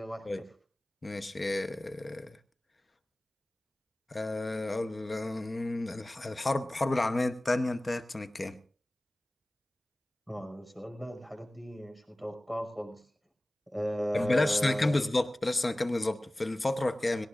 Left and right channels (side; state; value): both; normal; correlation 0.98